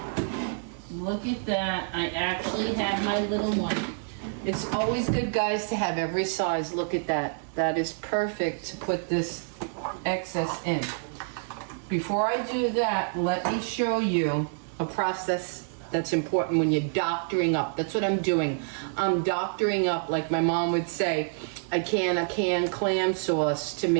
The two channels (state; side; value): silent; left; digital silence